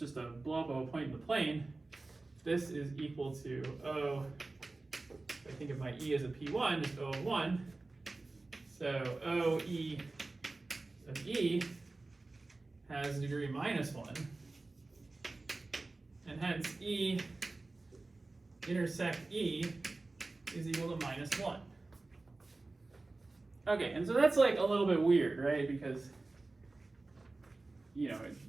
a blow up of a point in the plane, this is equal to O, if I think of my E as a P1, just O of 1. So O E of E has degree -1. And hence E intersect E is equal to -1. Okay, and so that's like a little bit weird, right? Because,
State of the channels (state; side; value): quieter; left; 3.3 dB